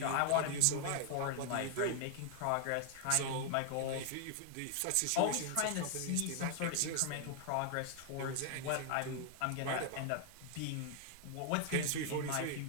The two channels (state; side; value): different; both; correlation 0.00